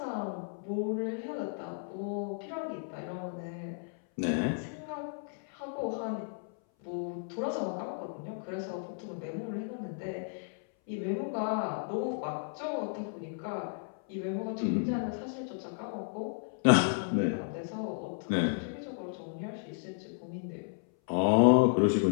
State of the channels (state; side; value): silent; right; 56 dB below the other